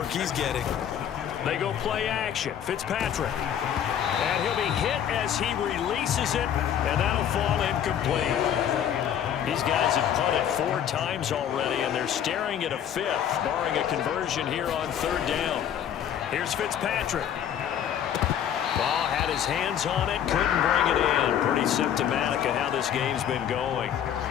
he's getting. They go play action. Fitzpatrick. And he'll be hit as he releases it, and that'll fall incomplete. These guys have punted 4 times already, and they're staring at a 5th, barring a conversion here on 3rd down. Here's Fitzpatrick. Ball had his hands on it, couldn't bring it in. Pretty symptomatic of how this game's been going.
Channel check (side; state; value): right; quieter; 9.5 dB